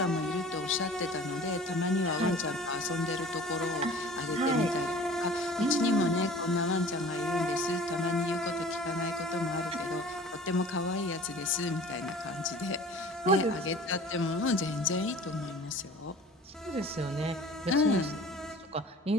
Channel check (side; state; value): both; normal; correlation 0.44